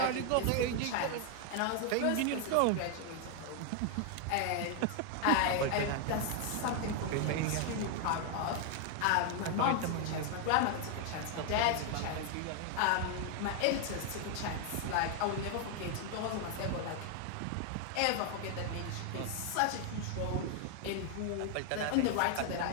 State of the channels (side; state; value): both; different; correlation 0.00